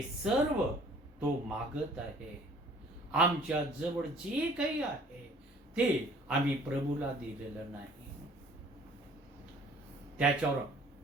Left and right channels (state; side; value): normal; both; correlation 0.54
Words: सर्व तो मागत आहे. आमच्या जवळ जे काही आहे ते आम्ही प्रभूला दिलेलं नाही. त्याच्यावर